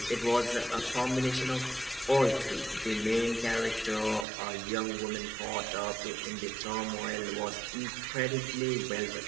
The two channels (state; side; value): drops out; left; at 4.2 s